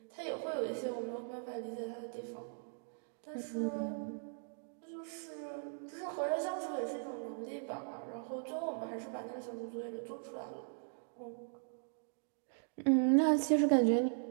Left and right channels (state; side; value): silent; left; digital silence